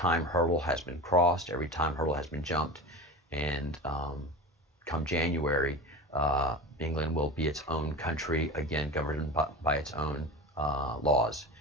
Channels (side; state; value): both; normal; correlation 0.30